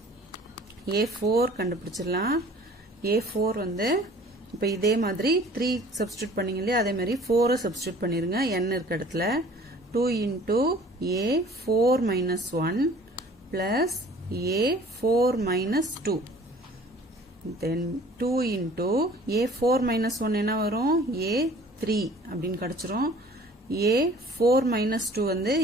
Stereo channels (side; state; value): both; normal; correlation 0.50